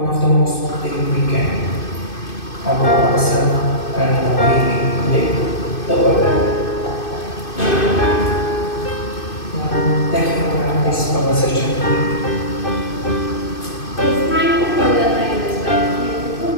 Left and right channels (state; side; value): late; right; 2.5 ms